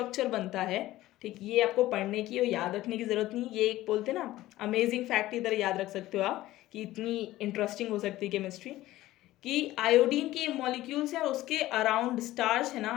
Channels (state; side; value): quieter; right; 16.0 dB